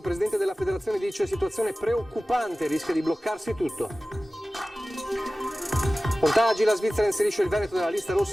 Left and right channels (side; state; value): both; normal; correlation 0.96